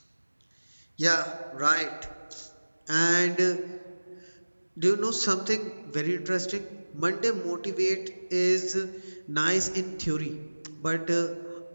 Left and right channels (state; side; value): inverted; both; correlation -1.00